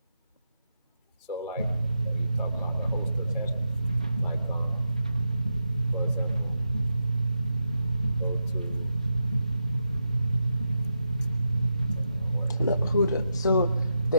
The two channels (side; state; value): both; inverted; correlation -0.86